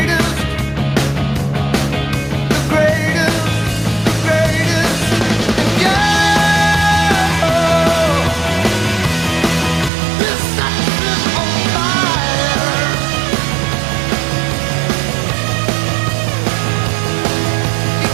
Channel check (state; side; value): drops out; left; at 9.9 s